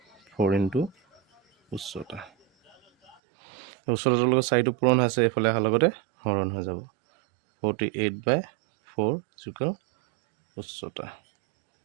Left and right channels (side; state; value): left; drops out; at 3.2 s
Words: 4 ইনটু উচ্চতাটোৰ লগত 4টো পূৰণ হৈছে এইফালে অহাৰ লগতে হৰণ হৈ যাব 48/4 ইজুকেল উচ্চতা